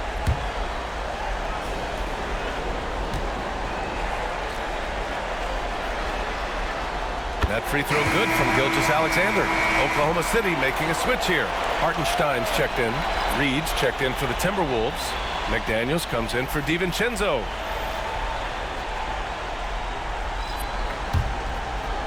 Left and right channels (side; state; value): both; identical; correlation 1.00